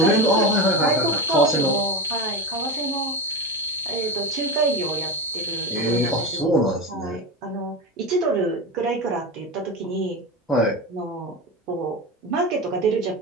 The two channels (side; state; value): both; normal; correlation 0.21